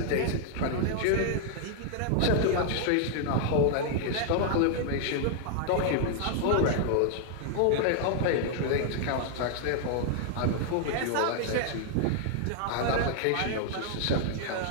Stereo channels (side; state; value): both; different; correlation 0.00